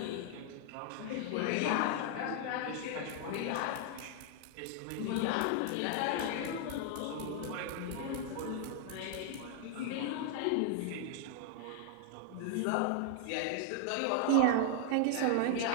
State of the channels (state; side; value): different; both; correlation 0.00